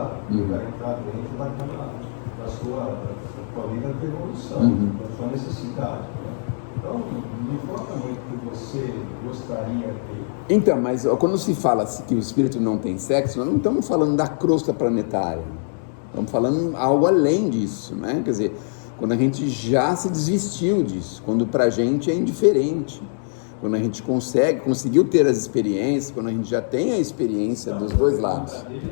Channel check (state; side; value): silent; right; digital silence